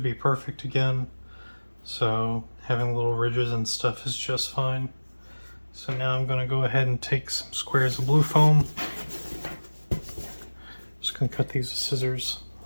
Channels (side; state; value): both; inverted; correlation -1.00